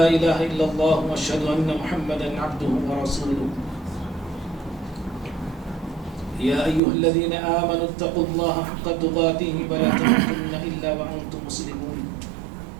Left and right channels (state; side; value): drops out; left; at 6.8 s